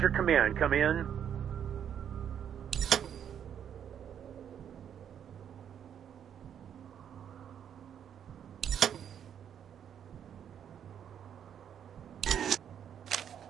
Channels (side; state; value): left; quieter; 8.9 dB